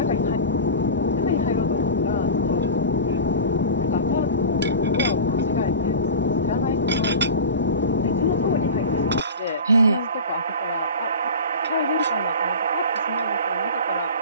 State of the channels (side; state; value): both; inverted; correlation -0.32